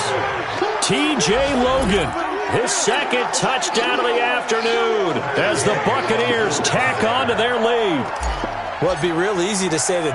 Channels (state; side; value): identical; both; correlation 1.00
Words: T.J. Logan, his second touchdown of the afternoon as the Buccaneers tack on to their lead. Well, it'd be real easy to say that